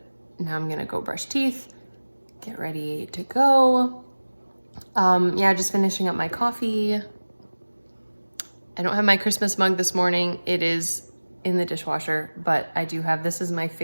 now I'm going to go brush teeth, get ready to go. Yeah, just finishing up my coffee. I don't have my Christmas mug this morning. It is in the dishwasher, but I do have, this is my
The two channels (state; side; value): inverted; both; correlation -1.00